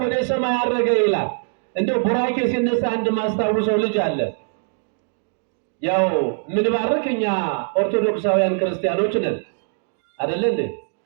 ወደ ሰማይ አረገ ይላል። እንደው ቡራኬ ሲነሳ አንድ ማስታውሰው ልጅ አለ። ያው ምንባርክ እኛ ኦርቶዶክሳውያን ክርስቲያኖች ነን አይደል እንዴ?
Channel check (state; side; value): silent; left; 64 dB below the other